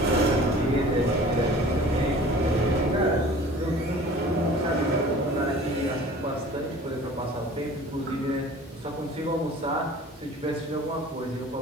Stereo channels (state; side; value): normal; both; correlation 0.45